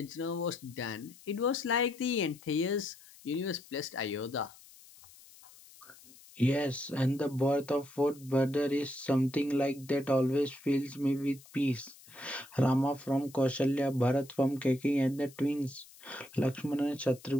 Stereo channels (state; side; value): noise; left; hiss, 22 dB below the sound